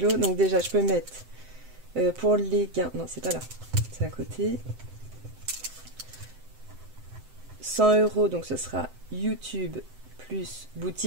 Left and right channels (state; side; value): late; left; 7.8 ms